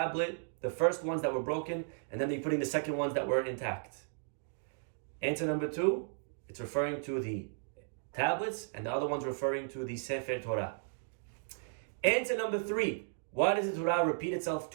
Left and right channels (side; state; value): left; silent; digital silence